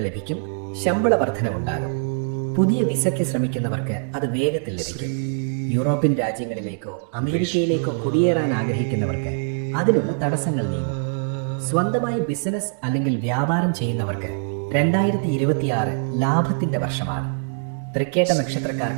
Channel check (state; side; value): silent; left; digital silence